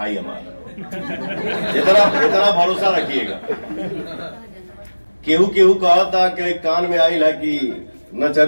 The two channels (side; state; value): both; inverted; correlation -1.00